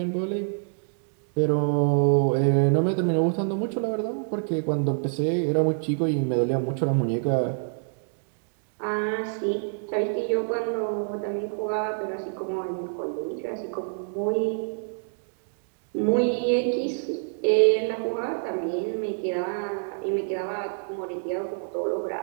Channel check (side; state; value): left; silent; digital silence